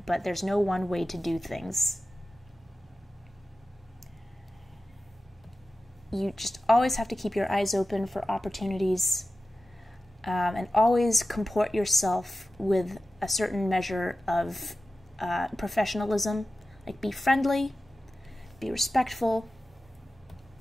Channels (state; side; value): normal; both; correlation 0.94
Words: but there's no one way to do things. You just always have to keep your eyes open for opportunities, and always comport yourself with a certain measure of professionalism. Like, be friendly, be respectful.